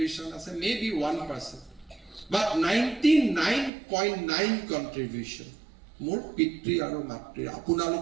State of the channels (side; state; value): left; drops out; at 3.7 s